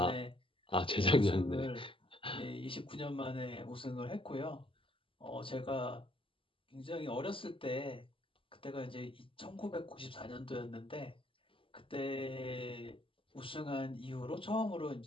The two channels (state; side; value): late; right; 0.25 ms